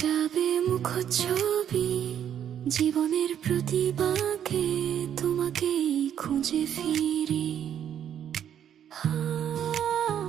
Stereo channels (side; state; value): left; quieter; 9.6 dB